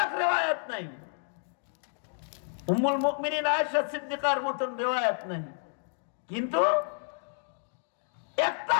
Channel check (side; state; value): right; silent; 58 dB below the other